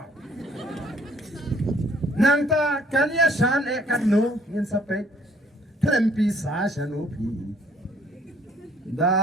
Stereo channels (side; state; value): both; normal; correlation 0.61